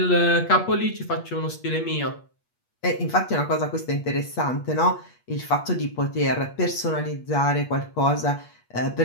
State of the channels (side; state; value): right; late; 8.4 ms